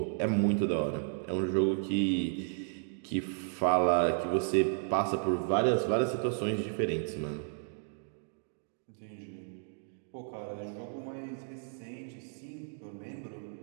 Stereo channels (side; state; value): left; silent; digital silence